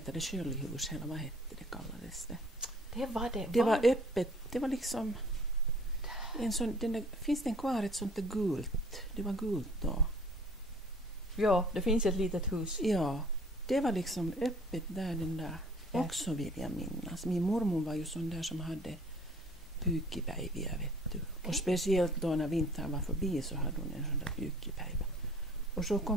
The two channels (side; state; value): both; normal; correlation 0.53